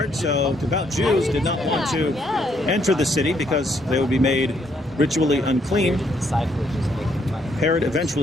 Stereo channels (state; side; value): normal; both; correlation 0.71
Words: so devout Jews did not want to enter the city because they would be made ritually unclean. Herod